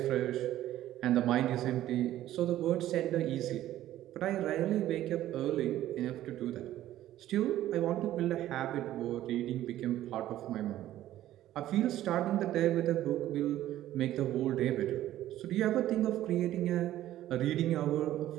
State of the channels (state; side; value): quieter; left; 13.5 dB